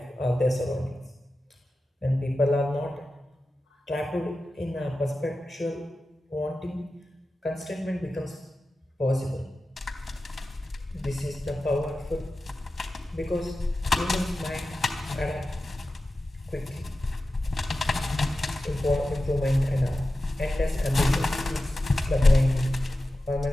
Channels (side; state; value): both; normal; correlation 0.94